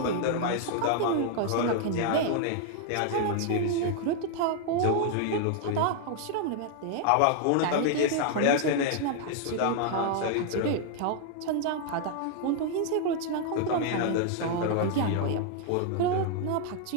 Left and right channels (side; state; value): both; different; correlation 0.00